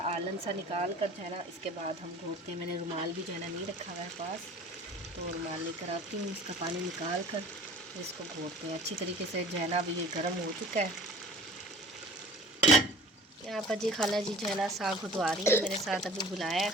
आलन सा निकाल कर जो है ना इसके बाद हम घोटते हैं। मैंने रुमाल भी जो है ना नहीं रखा हुआ है पास, तो रुमाल लेकर आती हूँ, इसका पानी निकाल कर इसको घोटते हैं अच्छी तरीके से। जो है ना अभी ये गर्म हो चुका है। यहाँ पर जी खाला जी जो है ना साग घुटवा रही है मेरे साथ, अभी बुलाया है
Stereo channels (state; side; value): normal; both; correlation 0.45